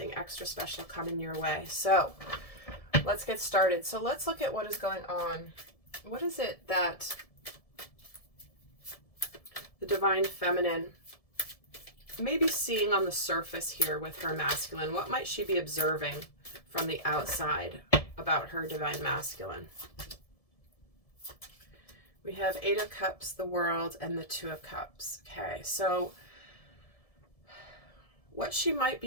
extra special coming your way. So let's get started. So let's look at what is going on. What is it that the Divine Feminine may be seeing on the surface here with her masculine? What might she be observing from the outside about her Divine Masculine? We have 8 of Cups, the World, and the 2 of Cups. Okay, so what she might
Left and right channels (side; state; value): right; late; 1.7 ms